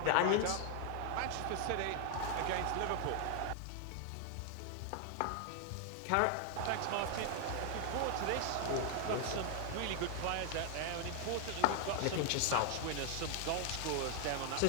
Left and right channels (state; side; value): different; both; correlation 0.00